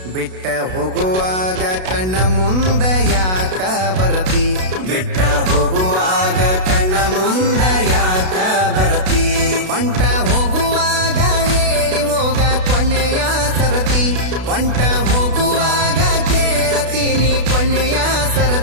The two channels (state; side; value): late; left; 32 ms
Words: ಹೋಗುವಾಗ ಕಣ್ಣ ಮುಂದ ಯಾಕ ಬರತಿ, ಬಿಟ್ಟ ಹೋಗುವಾಗ ಕಣ್ಣ ಮುಂದ ಯಾಕ ಬರತಿ. ಪಂಟ ಹೋಗುವಾಗ ಹೇಳಿ ಹೋಗ ಕೊನೆಯ ಸರತಿ, ಪಂಟ ಹೋಗುವಾಗ ಕೇಳತೀನಿ ಕೊನೆಯ